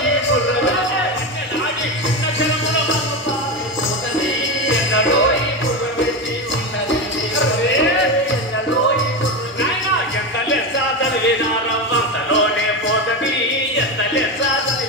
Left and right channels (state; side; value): normal; both; correlation 0.16